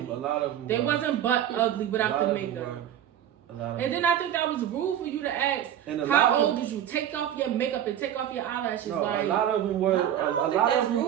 A lot of them. They wasn't butt ugly without the makeup. And then I think that was rude for you to ask, how old did you? Take off your makeup and take off your eyelashes. No, like, a lot of them were. A lot of them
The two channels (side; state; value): left; quieter; 10.6 dB